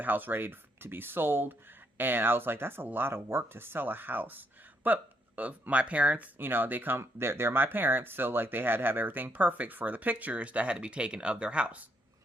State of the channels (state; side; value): normal; both; correlation 0.74